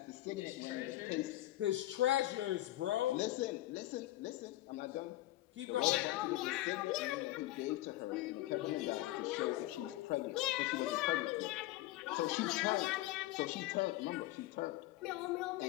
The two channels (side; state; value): right; quieter; 16.5 dB